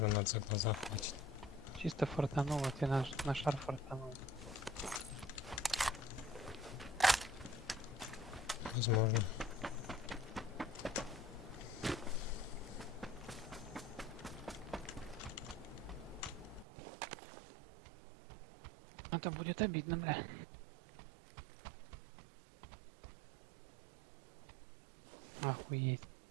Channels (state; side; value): drops out; left; at 16.7 s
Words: за глаза хватит. Чисто фортануло, ты на шар фортанул. Возможно. Это будет обидно, бля. Охуеть.